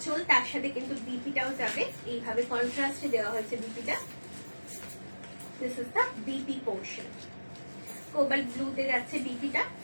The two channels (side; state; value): both; inverted; correlation -1.00